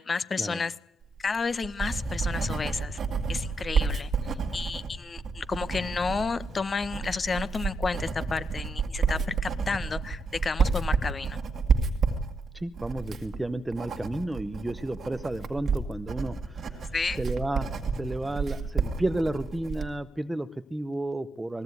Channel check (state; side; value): normal; both; correlation 0.83